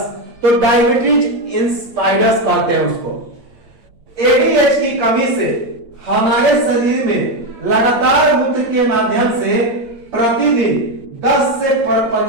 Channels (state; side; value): late; left; 8.9 ms